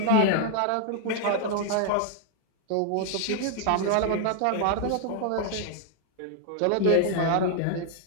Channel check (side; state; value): both; different; correlation 0.00